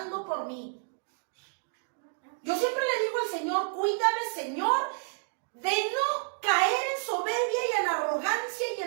por mí. Yo siempre le digo al Señor, cuídame, Señor, de no caer en soberbia y en arrogancia y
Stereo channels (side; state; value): left; silent; digital silence